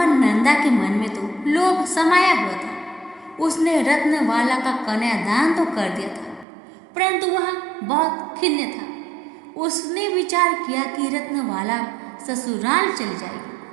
नंदा के मन में तो लोभ समाया हुआ था। उसने रत्नवाला का कन्यादान तो कर दिया था, परंतु वह बहुत खिन्न था। उसने विचार किया कि रत्नवाला ससुराल चली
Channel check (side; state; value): left; drops out; at 6.5 s